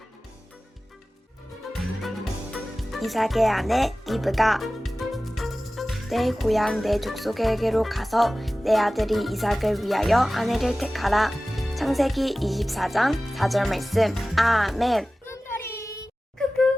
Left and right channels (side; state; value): both; normal; correlation 0.97